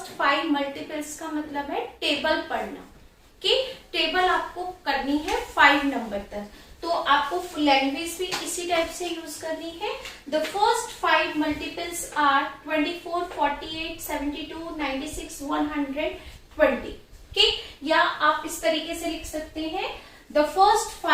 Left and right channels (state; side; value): identical; both; correlation 1.00